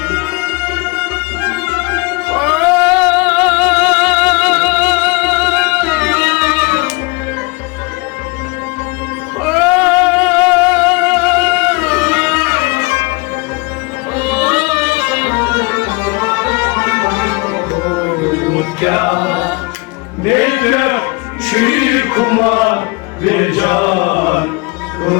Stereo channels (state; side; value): quieter; right; 27.2 dB